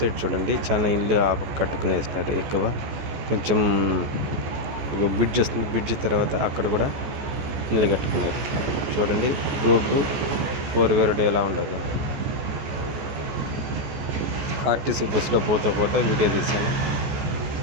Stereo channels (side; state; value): left; late; 14 ms